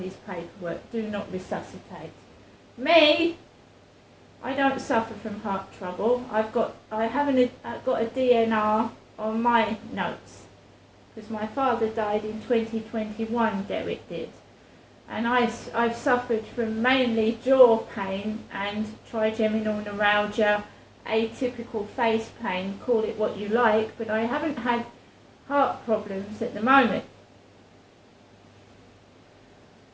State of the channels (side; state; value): both; identical; correlation 1.00